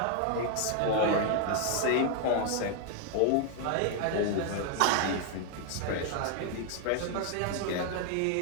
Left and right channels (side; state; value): both; different; correlation 0.00